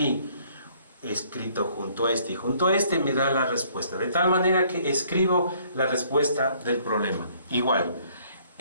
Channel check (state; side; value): inverted; both; correlation -0.62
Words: escrito junto a y junto a me da la respuesta, de tal manera que escribo la respuesta del problema. Igual,